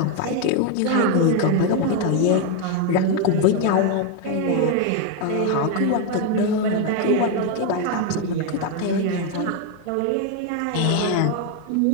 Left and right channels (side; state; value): both; different; correlation 0.01